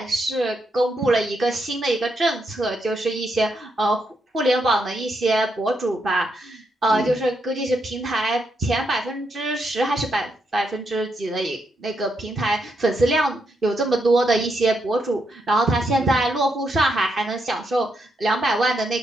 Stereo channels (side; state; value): both; normal; correlation 0.80